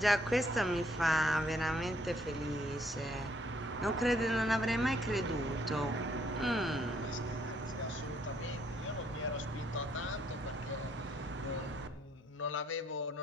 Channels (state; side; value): normal; both; correlation 0.68